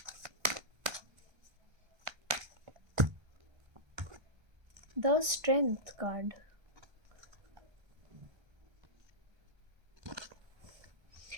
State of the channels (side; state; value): left; late; 1.3 ms